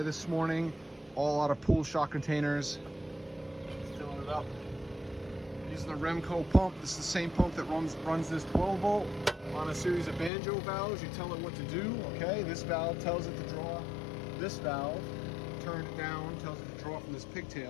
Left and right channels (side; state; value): right; drops out; at 10.3 s